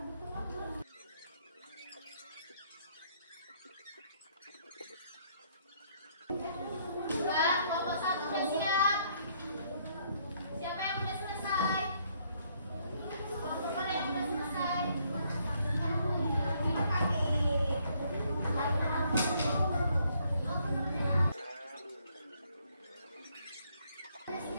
kelompok satu udah siap. Siapa yang udah selesai? Kelompok mana yang udah selesai?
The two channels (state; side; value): inverted; both; correlation -0.69